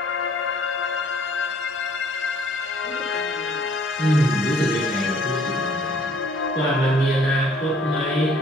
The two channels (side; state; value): both; normal; correlation 0.59